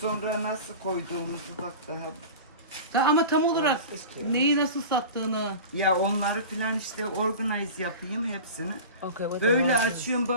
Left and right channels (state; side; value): inverted; both; correlation -0.33